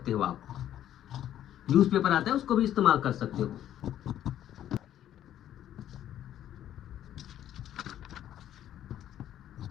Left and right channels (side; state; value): right; quieter; 11.4 dB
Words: हो आप, न्यूज पेपर आता है उसको भी इस्तेमाल कर सकते हो।